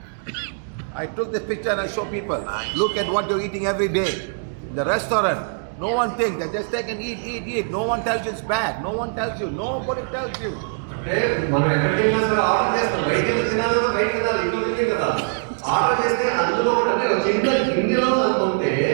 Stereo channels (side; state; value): left; silent; digital silence